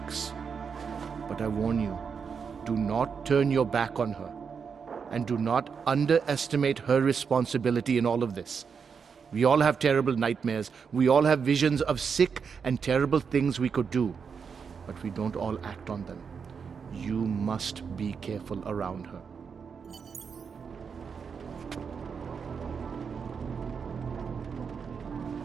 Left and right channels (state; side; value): quieter; left; 6.2 dB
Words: But I warn you, do not turn your back on her. And do not underestimate her responsibility in all of this. We all have terrible nightmares. We all have visions of sick and terrible things we could do. But we don't all act on them. You must be careful around her.